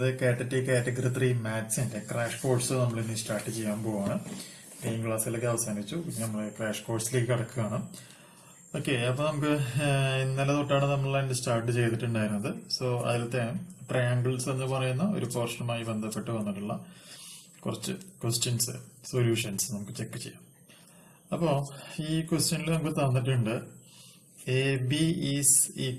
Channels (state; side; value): identical; both; correlation 1.00